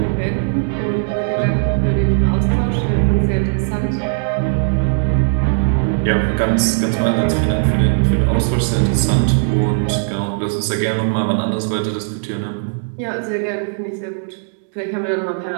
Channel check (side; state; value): left; silent; digital silence